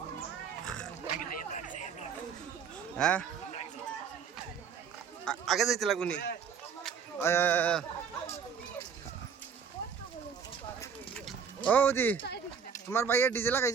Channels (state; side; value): quieter; left; 6.8 dB